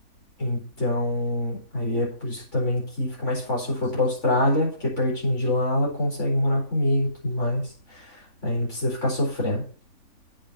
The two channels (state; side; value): late; right; 3.5 ms